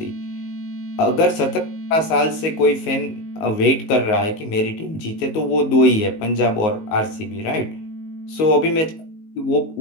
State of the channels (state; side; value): late; right; 19 ms